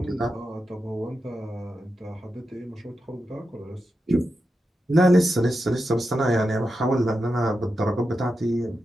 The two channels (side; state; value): both; normal; correlation 0.88